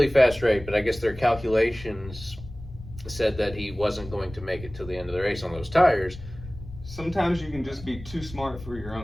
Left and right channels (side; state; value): left; noise; rumble, 15 dB below the sound